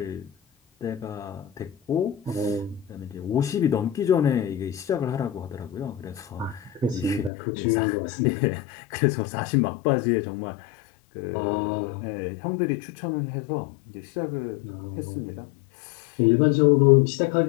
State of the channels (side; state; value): right; drops out; at 7.3 s